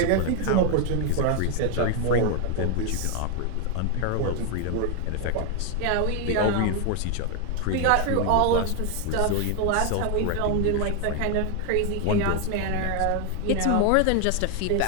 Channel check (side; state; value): both; different; correlation 0.01